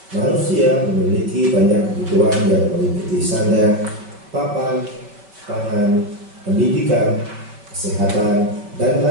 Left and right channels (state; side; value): late; left; 5.1 ms